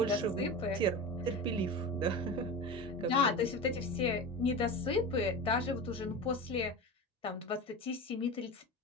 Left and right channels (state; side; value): normal; both; correlation 0.27